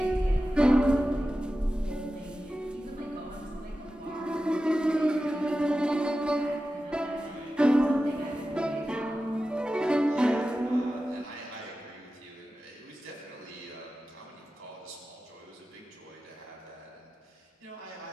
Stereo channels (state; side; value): normal; both; correlation 0.93